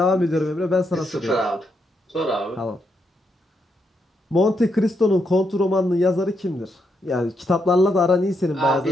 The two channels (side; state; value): both; normal; correlation 0.80